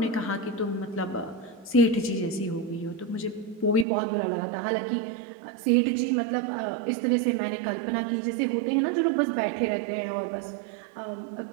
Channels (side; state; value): left; drops out; at 3.9 s